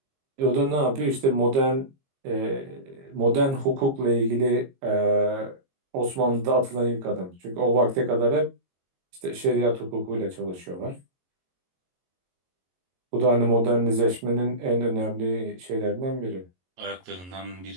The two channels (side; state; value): left; late; 22 ms